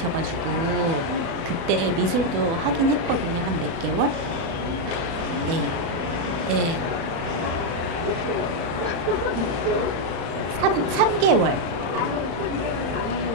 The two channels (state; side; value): late; left; 36 ms